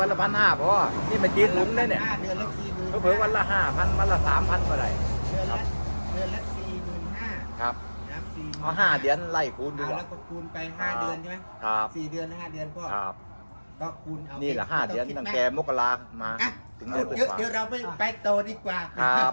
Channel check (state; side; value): inverted; both; correlation -1.00